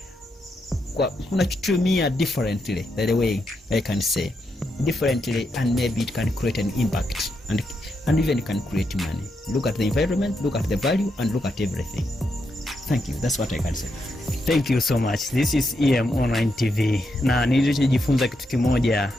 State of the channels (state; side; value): normal; both; correlation 0.82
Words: unachutumia differently, the way I can say differently, and maybe it can create an impact and even can create money. Look at the environment, look at the value, and look at everything. Thank you. That's what I can say. Thank you so much. This is EM Online TV. Na nilichojifunza kitu kimoja,